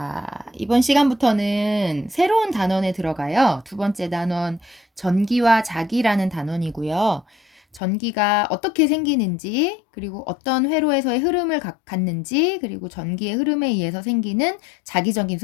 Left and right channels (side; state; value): right; drops out; at 7.8 s